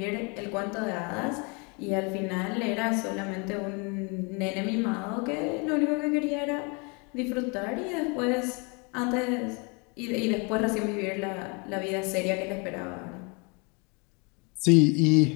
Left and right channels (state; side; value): quieter; right; 31.5 dB